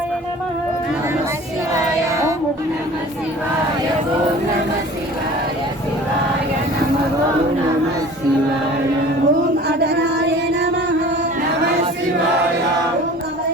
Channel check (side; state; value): both; normal; correlation 0.44